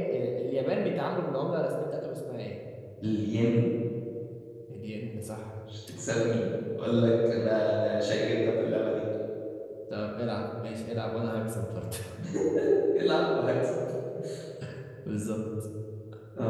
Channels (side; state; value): both; identical; correlation 1.00